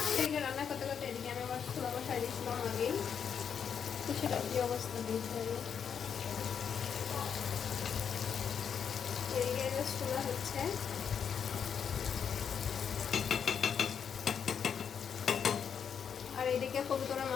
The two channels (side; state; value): right; quieter; 7.4 dB